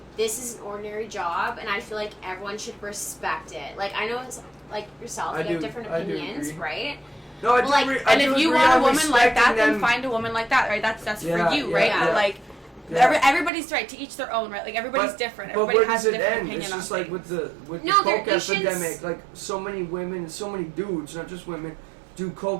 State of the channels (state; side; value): drops out; left; at 13.5 s